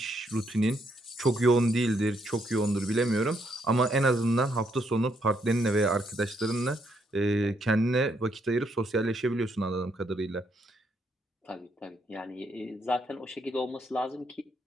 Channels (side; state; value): both; normal; correlation 0.74